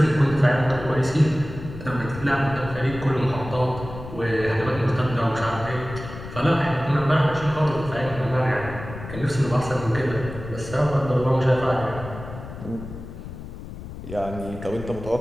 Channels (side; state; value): left; noise; rumble, 11 dB below the sound